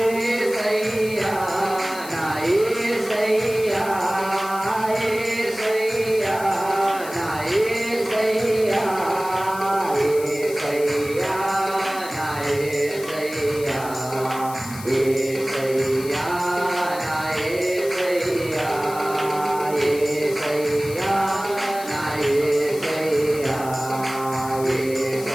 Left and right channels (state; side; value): noise; left; hiss, 15 dB below the sound